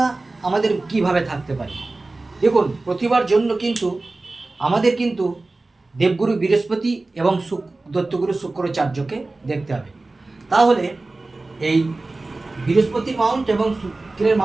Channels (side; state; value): left; quieter; 3.2 dB